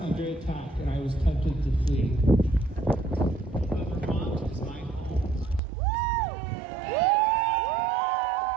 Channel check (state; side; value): drops out; left; at 5.6 s